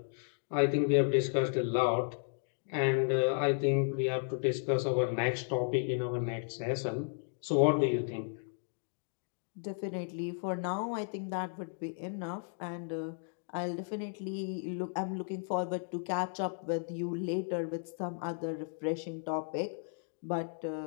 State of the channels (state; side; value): silent; right; digital silence